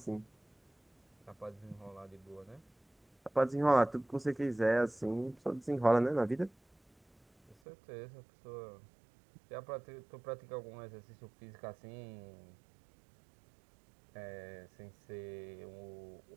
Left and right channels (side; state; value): left; drops out; at 7.6 s